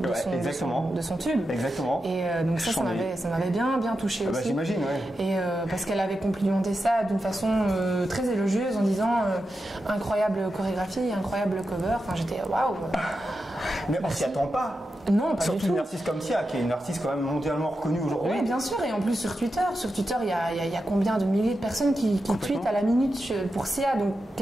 son tube. Exactement. Et donc ça m'avait bien touché aussi. J'imagine, ouais. Et parce qu'elle avait complimenté ça d'une façon très élogieuse en disant incroyable chorégraphie, incroyable cover. Enfin, j'étais waouh. Mais on s'y attend pas. Non, pas surtout du tout. Une artiste comme Sia, qui est une artiste quand même mondialement reconnue aujourd'hui. Oui, bien sûr. Et en plus sur Twitter, il y a combien de milliers de personnes qui tweetent à la minute pour Sia, donc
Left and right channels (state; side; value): normal; both; correlation 0.89